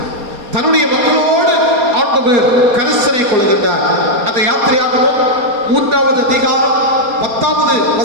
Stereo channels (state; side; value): late; left; 4.2 ms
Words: தன்னுடைய மக்களோடு ஆண்டவர் கரிசனை கொள்கின்றார். அந்த யாத்திரையாகவும் 3வது அதிகாரம் 10வது